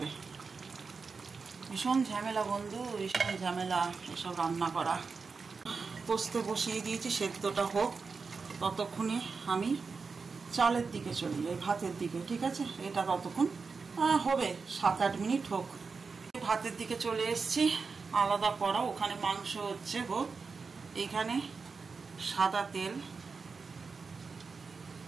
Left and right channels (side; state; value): left; quieter; 4.8 dB